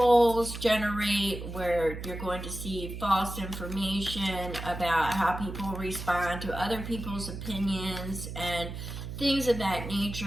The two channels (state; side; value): noise; right; hum, 8 dB below the sound